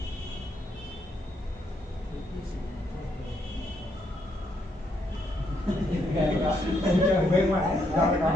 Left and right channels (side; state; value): both; normal; correlation 0.75